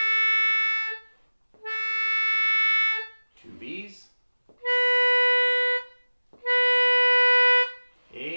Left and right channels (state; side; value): inverted; both; correlation -1.00